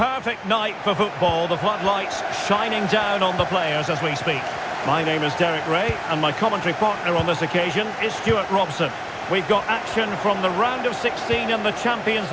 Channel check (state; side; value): identical; both; correlation 1.00